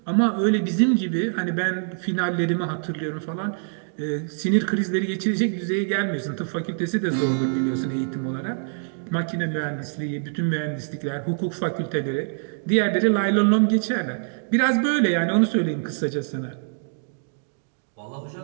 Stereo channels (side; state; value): left; silent; digital silence